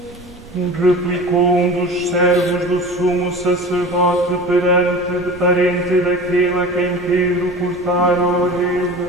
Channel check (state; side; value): normal; both; correlation 0.36